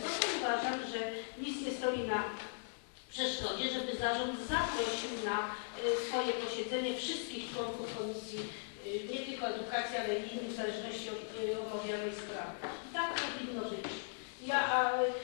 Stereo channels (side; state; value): right; silent; digital silence